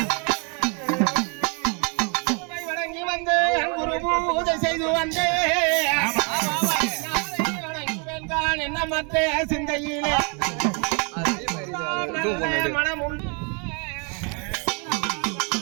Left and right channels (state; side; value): quieter; left; 35.3 dB